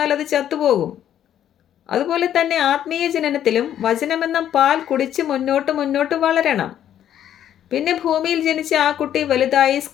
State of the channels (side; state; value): right; quieter; 10.6 dB